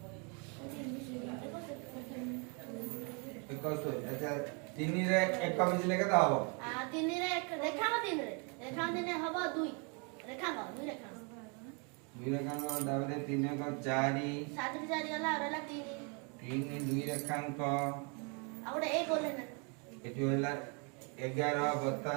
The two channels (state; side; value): quieter; left; 34.8 dB